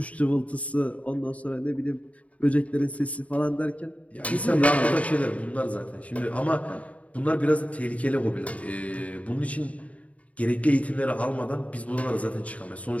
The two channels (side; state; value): right; late; 0.067 ms